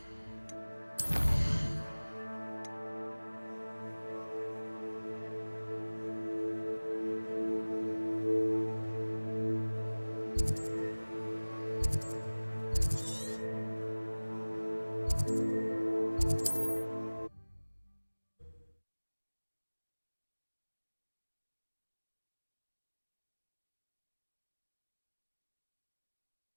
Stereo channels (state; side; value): inverted; both; correlation -1.00